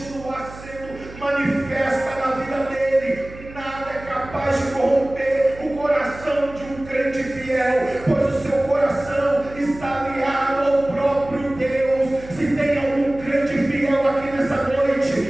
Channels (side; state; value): right; noise; hum, 16 dB below the sound